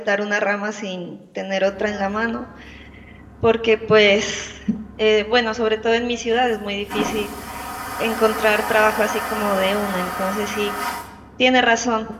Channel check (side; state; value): both; identical; correlation 1.00